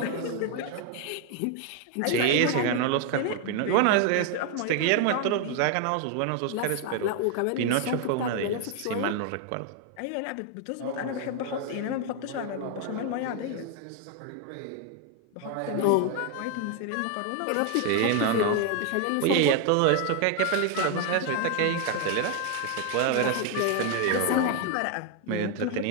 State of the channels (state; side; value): different; both; correlation 0.00